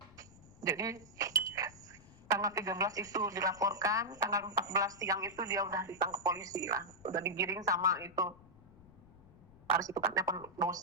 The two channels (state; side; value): noise; left; rumble, 23 dB below the sound